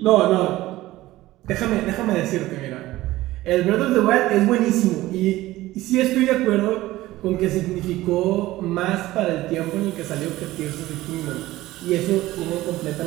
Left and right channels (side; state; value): left; quieter; 16.9 dB